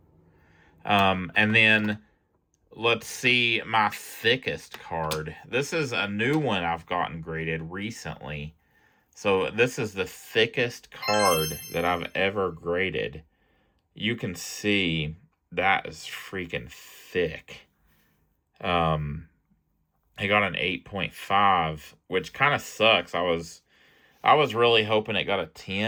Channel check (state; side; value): identical; both; correlation 1.00